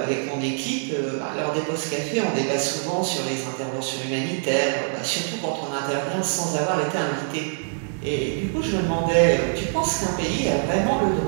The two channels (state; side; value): silent; left; digital silence